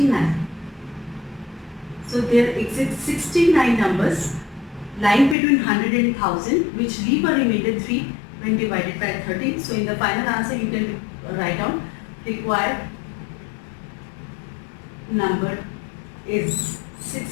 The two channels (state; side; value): drops out; right; at 5.4 s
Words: So there exist 69 numbers lying between 100 and 1000 which leave a remainder 3 when divided by 13. So in the final answer you can write down required number is